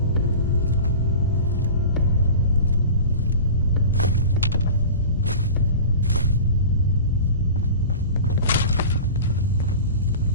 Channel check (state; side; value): inverted; both; correlation -0.36